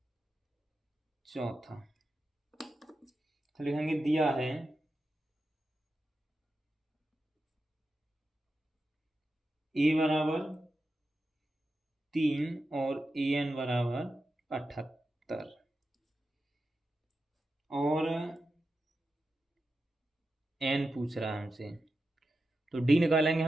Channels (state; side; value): normal; both; correlation 0.90